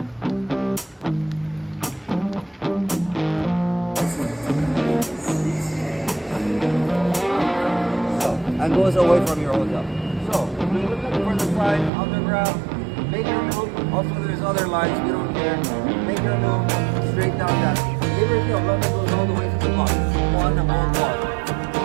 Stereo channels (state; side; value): drops out; left; at 11.9 s